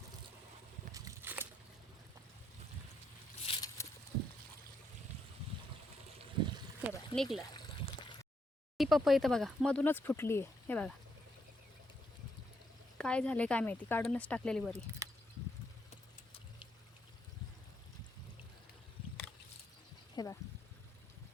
हे बघा निघलं. ही पपई तर बघा मधूनच फुटली आहे. हे बघा काय झाले काय माहिती, काढूनच टाकलेली बरी. हे बघा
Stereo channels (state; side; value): normal; both; correlation 0.77